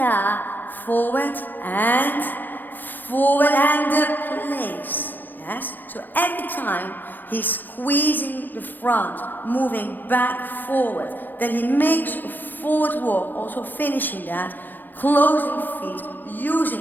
forward and the place. Yes? So every time he's squeezing the front, moving back forward. Then he makes a forward walk, also finishing that, closing feet,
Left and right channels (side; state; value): right; late; 0.088 ms